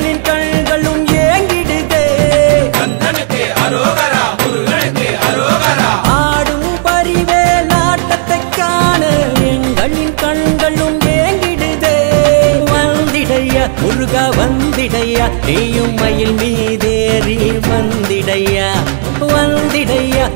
கண்களும் ஏங்கிடுதே ஆடும் பரிவேல் ஆட்டத்தை காண எங்களின் கண்களும் ஏங்கிடுதே வந்திடையா முருகா வந்திடையா நீயும் மயில் மீதேறி வந்திடையா வந்திடையா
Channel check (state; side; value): silent; left; digital silence